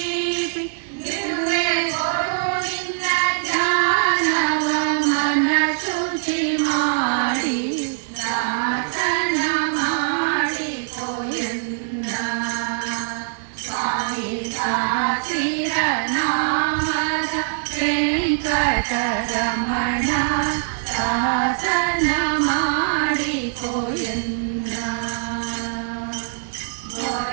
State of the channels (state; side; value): silent; left; digital silence